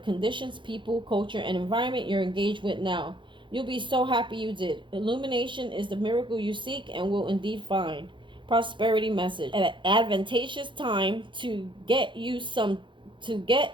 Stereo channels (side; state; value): left; late; 0.23 ms